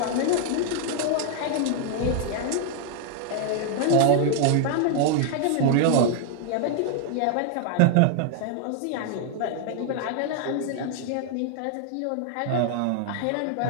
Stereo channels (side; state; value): both; different; correlation 0.00